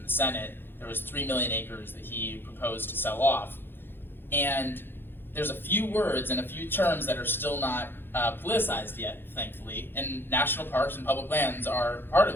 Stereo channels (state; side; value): late; right; 0.10 ms